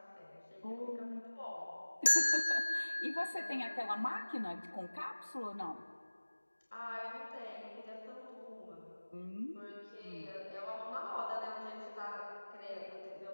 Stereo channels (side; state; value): both; inverted; correlation -1.00